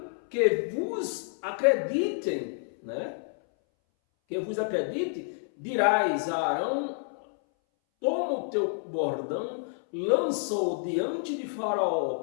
que vos acreditem, né? Que vos acredite, dirás a Arão, toma o teu bordão, lança-o diante de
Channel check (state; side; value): silent; right; 59 dB below the other